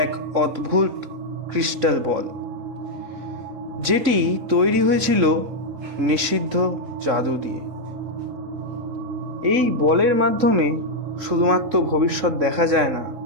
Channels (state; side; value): late; left; 3.8 ms